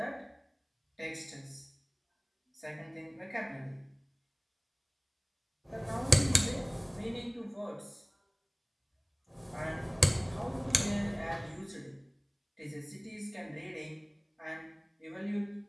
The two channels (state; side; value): identical; both; correlation 1.00